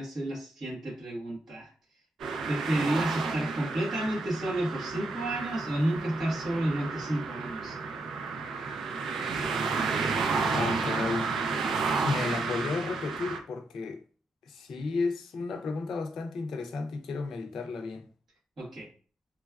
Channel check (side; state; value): both; normal; correlation 0.80